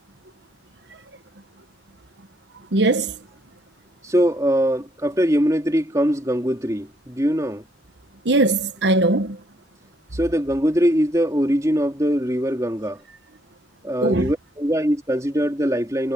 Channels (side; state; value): both; normal; correlation 0.69